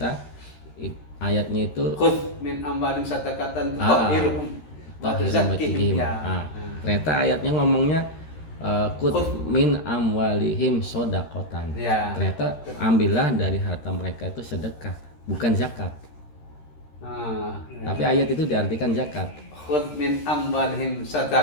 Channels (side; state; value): right; late; 13 ms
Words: ayatnya itu Khudh min amwalim sadaqatan tutahhiruhum wa tuzakkihim. Ternyata ayatnya ngomongnya khudh min amwalihim shadaqatan. Ya. Ternyata ambillah dari harta mereka itu sedekah, bukan zakat. Tapi ayat itu diartikan zakat. Khudh min amwalihim